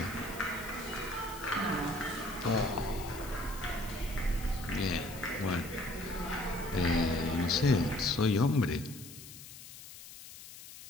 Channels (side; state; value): left; noise; hiss, 15 dB below the sound